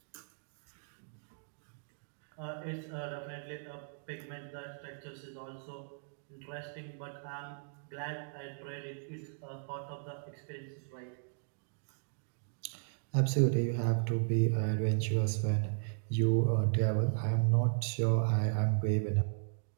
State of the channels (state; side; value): silent; left; digital silence